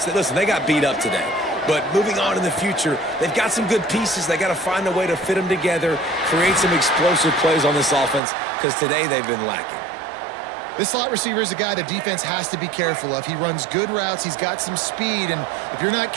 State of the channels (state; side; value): drops out; left; at 8.2 s